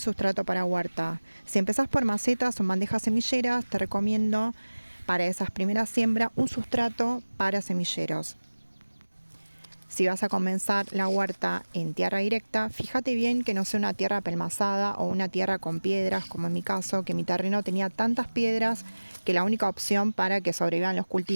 para huerta. Si empezás por macetas o bandejas semilleras, te recomiendo para esas primeras siembras un sustrato para semilleros. Si vas a comenzar la huerta en tierra directa, fíjate bien que no sea una tierra apelmazada o una tierra con piedras, como en mi caso, que mi terreno tenía tantas piedras que la única opción para que sobrevivan los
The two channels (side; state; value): both; inverted; correlation -1.00